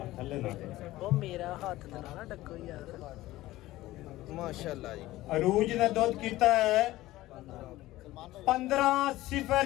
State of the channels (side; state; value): right; quieter; 16.8 dB